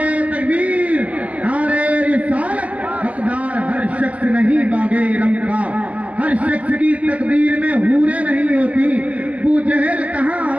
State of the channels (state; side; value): late; left; 0.071 ms